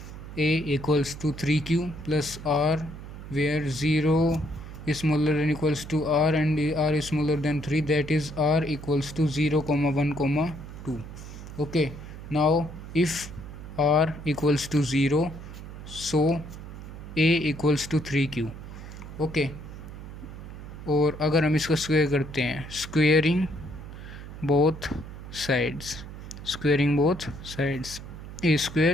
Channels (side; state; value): right; noise; hum, 12 dB below the sound